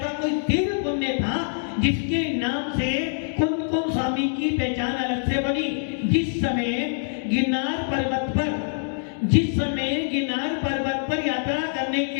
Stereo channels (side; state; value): right; silent; digital silence